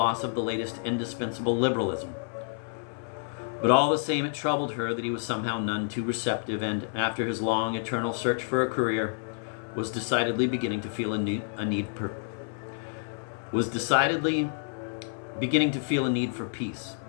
of the latest indispensable liberalism. But all the same, it troubled her that he was somehow none too receptive, and after his long, eternal search for a career, was decidedly beginning to feel a need for peace.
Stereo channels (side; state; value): right; silent; 59 dB below the other